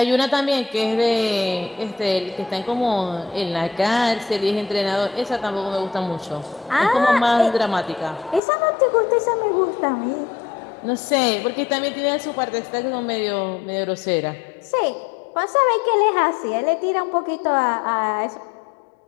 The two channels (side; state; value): right; drops out; at 8.4 s